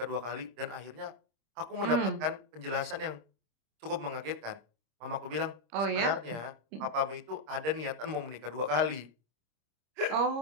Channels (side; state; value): left; late; 26 ms